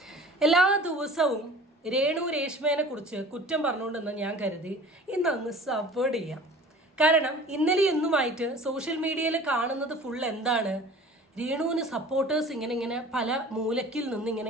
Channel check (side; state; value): both; normal; correlation 0.44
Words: എല്ലാ ദിവസവും രേഷ്മേനെ കുറിച്ച് കുറ്റം പറഞ്ഞുകൊണ്ടെന്ന് ഞാൻ കരുതി ഇന്നങ്ങ് സപ്പോർട്ട് ചെയ്യാം. കാരണം ഇന്നലെ ഇന്നുമായിട്ട് സോഷ്യൽ മീഡിയയിൽ കാണുന്നത് ഫുൾ എന്താണ്? രേണുവിന് സപ്പോർട്ടേഴ്സ് ഇങ്ങനെ പല മൂലക്കിൽ നിന്ന്